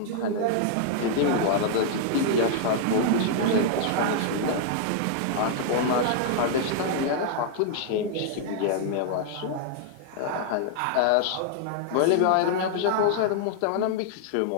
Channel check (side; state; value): both; different; correlation -0.01